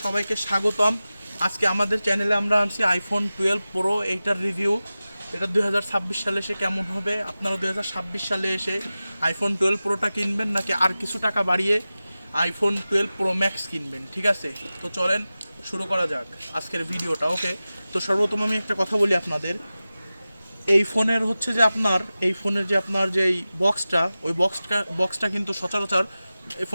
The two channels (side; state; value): both; inverted; correlation -0.96